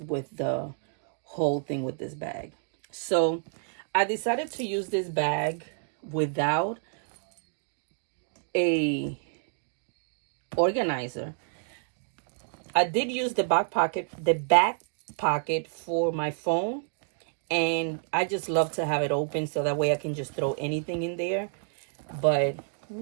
the whole thing with this bag. So I decided to use this bag without a organizer. I did use the back pocket for my phone, and I just love to have it open so that way I can just throw anything in there. But let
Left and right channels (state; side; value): silent; left; digital silence